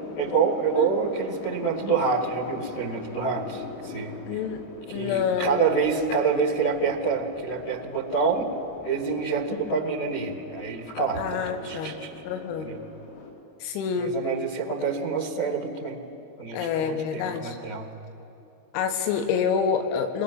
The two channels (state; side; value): late; right; 25 ms